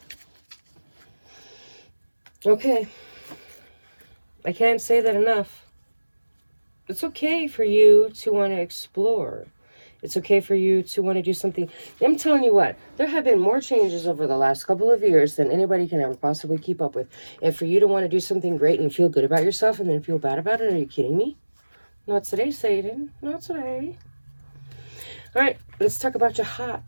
Okay. I can't say that enough. It's okay for you to want to explore. It's okay for you to want to do something. I'm telling you what, there have been more changes over the last couple of years than anybody can ever possibly keep up with. And for you to want to do something great and feel good about yourself and then feel bad about it, are you kidding me? Not today, Satan. Not today. All right, let's talk about your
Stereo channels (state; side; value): inverted; both; correlation -1.00